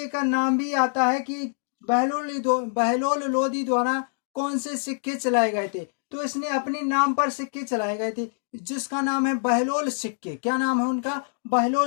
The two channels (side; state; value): right; silent; digital silence